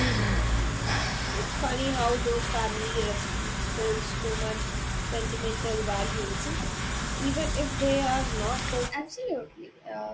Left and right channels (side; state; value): both; identical; correlation 1.00